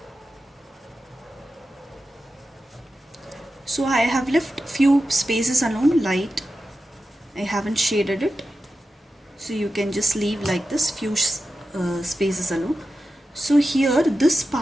So I have left few spaces alone, light. I haven't shaded it. So you can just leave like this, few spaces alone. So here, this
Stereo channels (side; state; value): both; normal; correlation 0.91